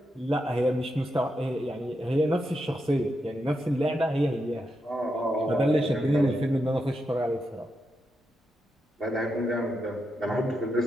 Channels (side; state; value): both; normal; correlation 0.85